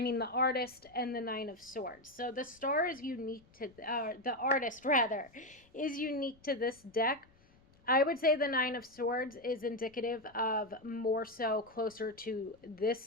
artist and the Nine of Swords. So the star is unique to, the artist rather, is unique to this deck. I would say the Nine of Swords is indicative of more so closer to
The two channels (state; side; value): noise; left; rumble, 29 dB below the sound